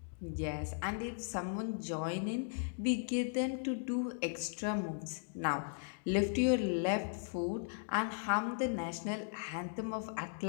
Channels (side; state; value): right; silent; digital silence